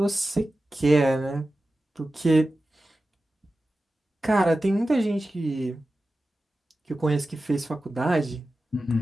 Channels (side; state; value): both; normal; correlation 0.94